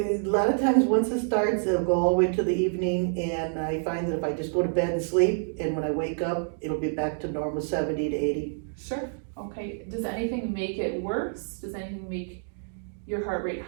lot of times, once it starts, it'll go all the way to the evening, and I find that if I just go to bed and sleep, and when I wake up, it'll be back to normal 70 to 80. Sure, okay. Does anything make it worse? Does anything make your heart rate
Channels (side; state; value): left; silent; digital silence